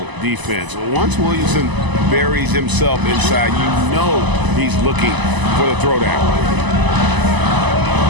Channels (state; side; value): late; left; 1.0 ms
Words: defense. Once Williamson buries himself inside, you know he's looking for the throwdown.